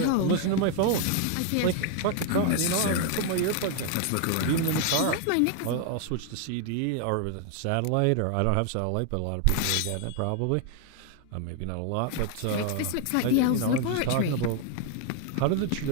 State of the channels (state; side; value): different; both; correlation 0.00